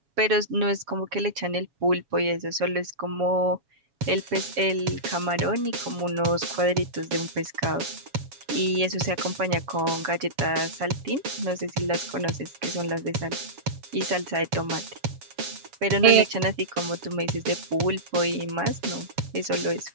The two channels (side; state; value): left; late; 7.2 ms